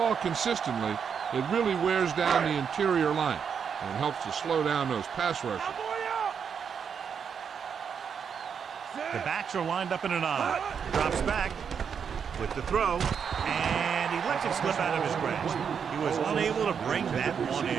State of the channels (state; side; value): quieter; left; 7.0 dB